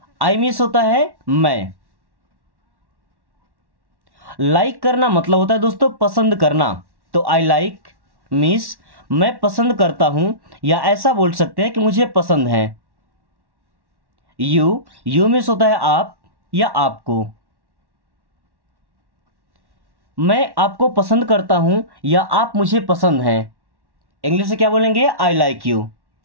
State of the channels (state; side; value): late; left; 1.1 ms